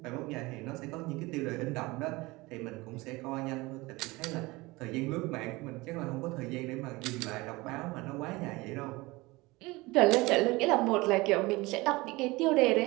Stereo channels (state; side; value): quieter; left; 22.2 dB